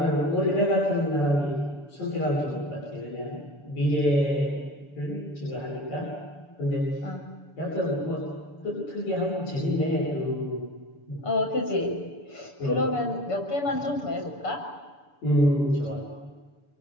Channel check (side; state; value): right; late; 6.9 ms